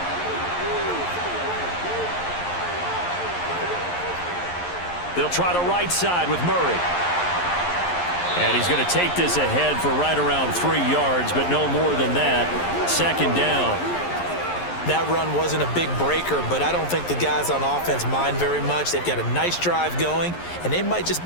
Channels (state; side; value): late; right; 11 ms